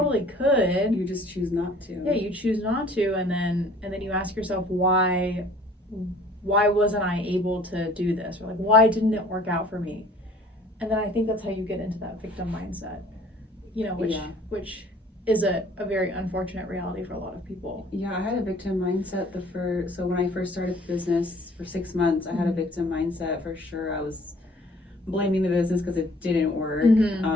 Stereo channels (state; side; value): normal; both; correlation 0.53